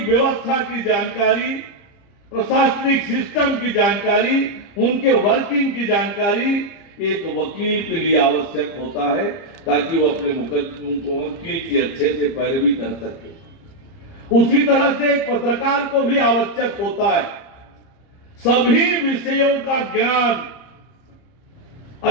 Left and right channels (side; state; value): right; late; 30 ms